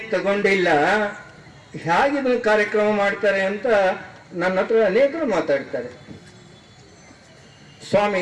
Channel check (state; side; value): identical; both; correlation 1.00